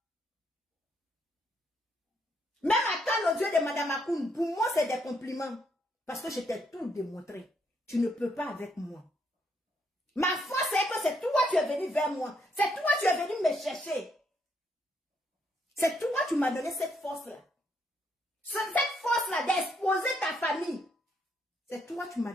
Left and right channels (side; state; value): both; normal; correlation 0.74